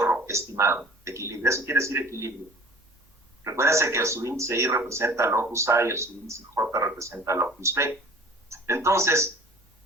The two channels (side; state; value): both; normal; correlation 0.47